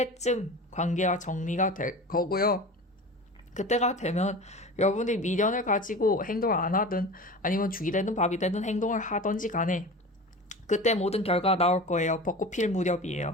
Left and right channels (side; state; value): both; normal; correlation 0.34